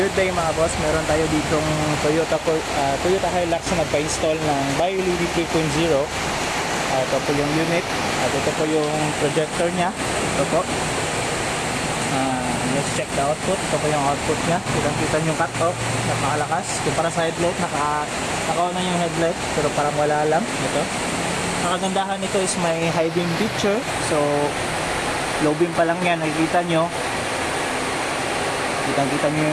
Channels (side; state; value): both; identical; correlation 1.00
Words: day mga boss, meron tayo ditong Toyota Hilux na nagpa-install ng BioLED 3.0. Ito po yung unit at ito po yung projector nya. Ito po. Let's check the output. Ito po yung output nya. Kita yung cut-off, napakalakas. Kumpara sa headlight, naka-on na yung headlight pero parang wala lang. Ito. Ang kagandahan nito is may high beam picture. So low beam pa lang yan, nakikita nyo. Kita nyo